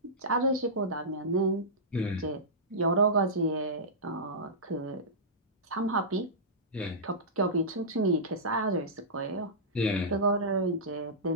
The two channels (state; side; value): normal; both; correlation -0.15